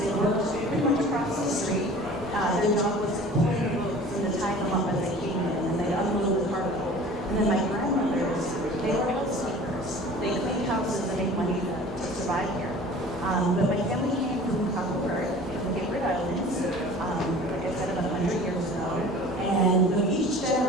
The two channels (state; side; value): normal; both; correlation 0.44